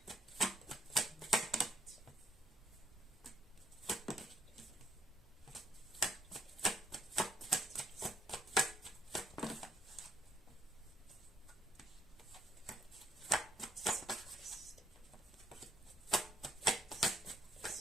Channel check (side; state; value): both; normal; correlation 0.72